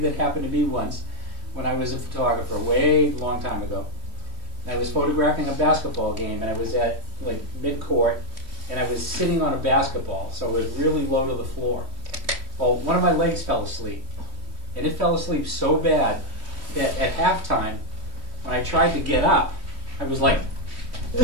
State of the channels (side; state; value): left; late; 3.0 ms